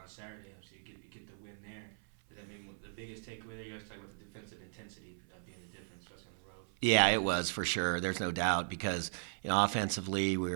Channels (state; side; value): silent; left; 53 dB below the other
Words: on Saturday, so you get the win there. Does that mean the biggest takeaway there? You guys talk about the defensive intensity being the difference, especially on the road. Yeah, it was for sure. There's no doubt because offensively we